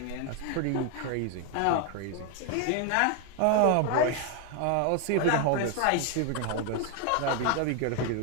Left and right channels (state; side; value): different; both; correlation 0.01